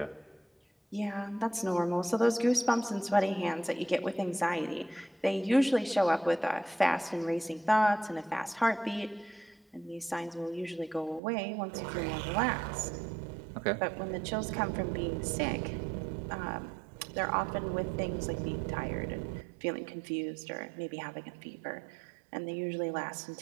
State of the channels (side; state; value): left; drops out; at 11.2 s